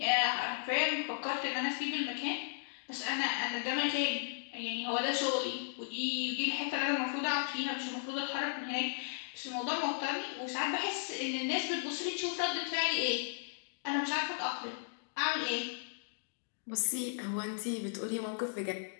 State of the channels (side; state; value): right; silent; digital silence